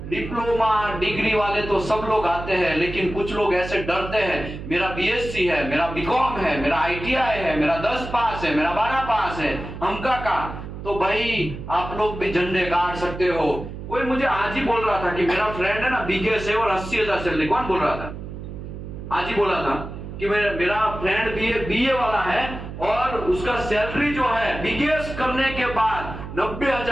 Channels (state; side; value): noise; right; hum, 10 dB below the sound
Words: डिप्लोमा डिग्री वाले तो सब लोग आते हैं, लेकिन कुछ लोग ऐसे डरते हैं, मेरा बीएससी है, मेरा बीकॉम है, मेरा आईटीआई है, मेरा 10 पास है, मेरा 12 पास है, हमका का। तो भाई आप लोग भी झंडे गाड़ सकते हो। कोई मुझे आज ही बोल रहा था कि मेरा फ्रेंड है ना बीकेएस है और 80,000 सैलरी। कौन बोल रहा था? आज ही बोला था कि मेरा फ्रेंड बीए वाला है और उसका सैलरी जो है बीकेएस करने के बाद